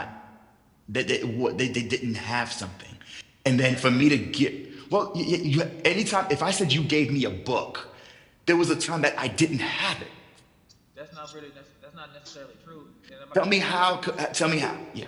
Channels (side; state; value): both; identical; correlation 1.00